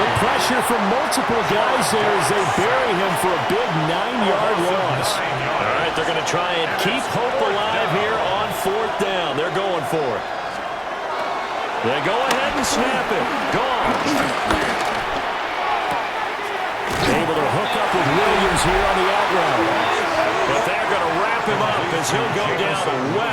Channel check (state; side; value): identical; both; correlation 1.00